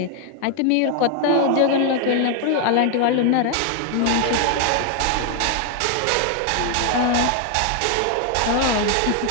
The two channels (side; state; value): both; different; correlation 0.00